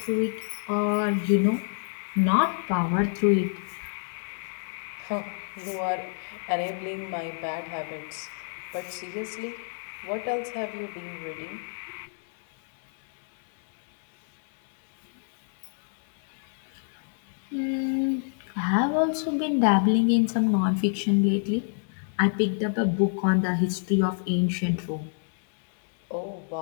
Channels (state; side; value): silent; right; 58 dB below the other